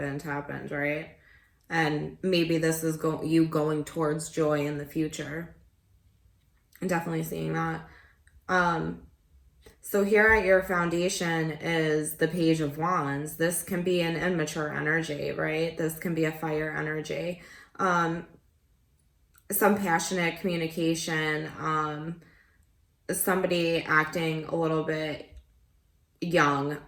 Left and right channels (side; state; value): both; identical; correlation 1.00